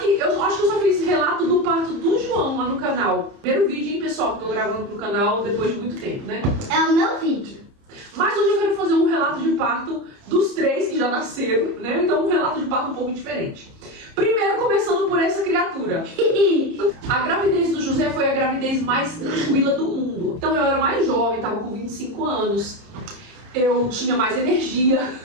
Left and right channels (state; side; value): late; left; 30 ms